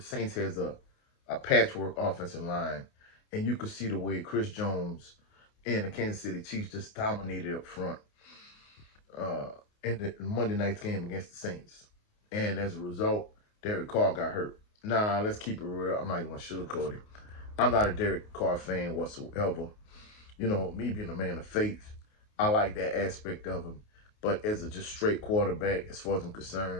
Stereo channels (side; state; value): right; late; 28 ms